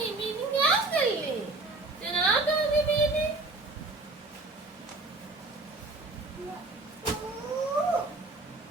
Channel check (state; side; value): quieter; left; 3.2 dB